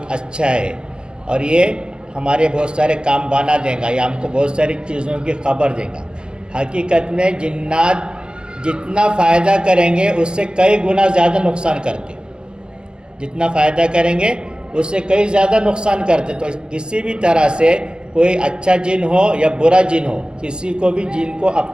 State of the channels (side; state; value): left; late; 0.049 ms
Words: اچھا ہے اور یہ ہمارے بہت سارے کام بنا دیں گا یا ہم کو بہت ساری چیزوں کی خبر دے گا. حقیقت میں جنات جتنا فائدہ کریں گے اس سے کئی گنا زیادہ نقصان کرتے. جتنا فائدہ کریں گے اس سے کئی زیادہ نقصان کرتے. تو کسی بھی طرح سے کوئی اچھا جن ہو یا برا جن ہو، کسی کو بھی جن کو